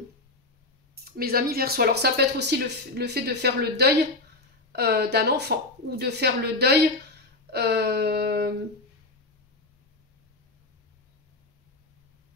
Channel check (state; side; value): quieter; right; 3.1 dB